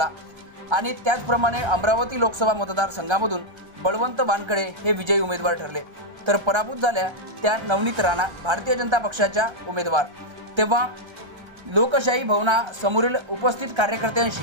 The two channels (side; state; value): left; late; 1.3 ms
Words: आणि त्याचप्रमाणे अमरावती लोकसभा मतदारसंघामधून बळवंत वानखडे हे विजयी उमेदवार ठरले, तर पराभूत झाल्या त्या नवनीत राणा भारतीय जनता पक्षाच्या उमेदवार। तेव्हा लोकशाही भवनासमोरील उपस्थित